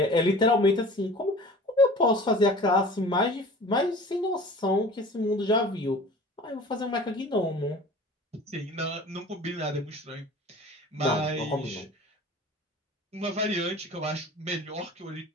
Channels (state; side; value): normal; both; correlation 0.42